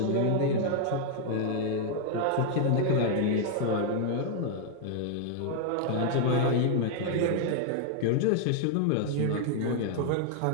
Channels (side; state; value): both; different; correlation 0.00